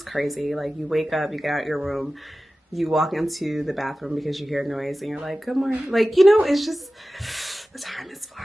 crazy. Like you wake up, you get out your room, you walk into the bathroom because you hear noise and you're like, good morning. Like, you know, it's just the time is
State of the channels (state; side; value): normal; both; correlation 0.95